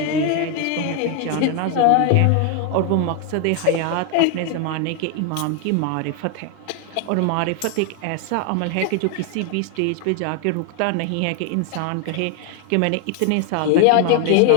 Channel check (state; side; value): different; both; correlation 0.01